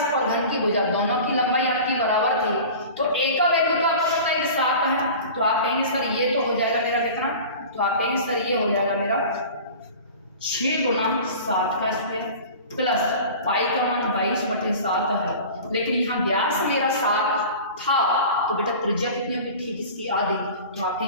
और घन की भुजा दोनों की लंबाई आपकी बराबर थी, तो a का वैल्यू तो आपको पता है 7 है। तो आप कहेंगे सर ये तो हो जाएगा मेरा कितना? तो आप कहेंगे सर ये हो जाएगा मेरा 6 गुना 7 का स्क्वायर प्लस पाई का मान 22/7 है। लेकिन यहाँ व्यास मेरा 7 था, तो बेटा त्रिज्या कितनी होगी? ठीक इसकी आधी। तो आप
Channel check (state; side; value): inverted; both; correlation -0.38